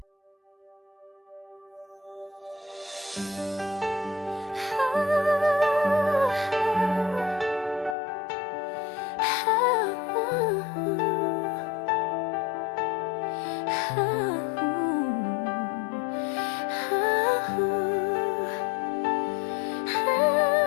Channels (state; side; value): drops out; right; at 8.0 s